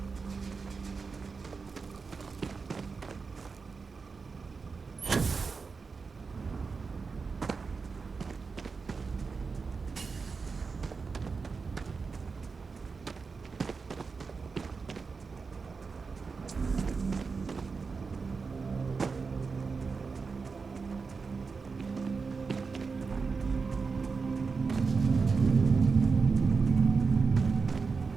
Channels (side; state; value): left; quieter; 4.8 dB